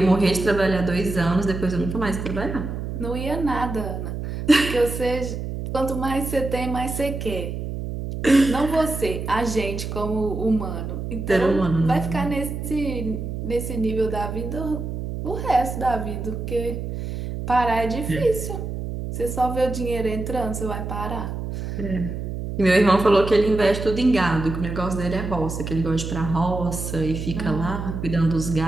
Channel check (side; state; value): right; noise; hum, 5 dB below the sound